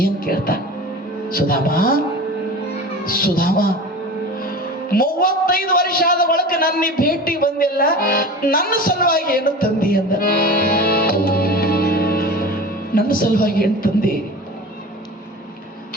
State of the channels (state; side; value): normal; both; correlation 0.34